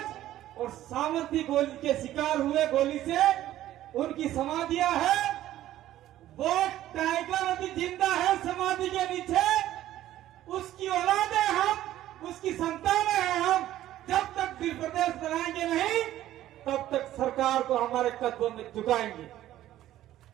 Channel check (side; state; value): left; quieter; 13.5 dB